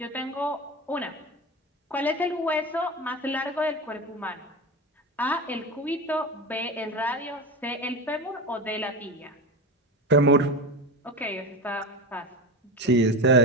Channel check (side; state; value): both; normal; correlation 0.23